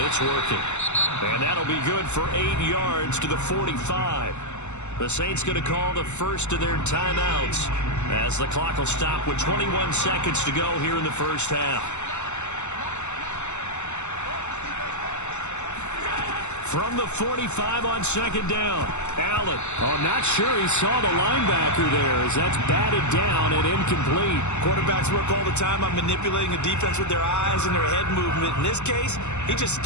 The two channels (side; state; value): right; late; 0.83 ms